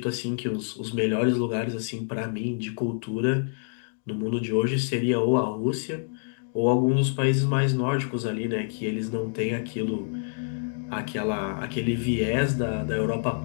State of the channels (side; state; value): right; silent; digital silence